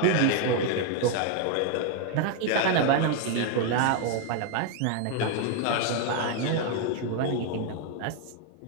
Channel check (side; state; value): both; different; correlation 0.01